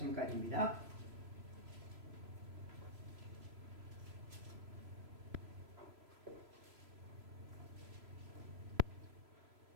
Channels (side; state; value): left; late; 3.0 ms